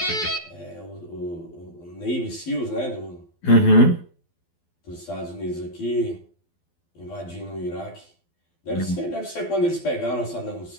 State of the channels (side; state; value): right; late; 12 ms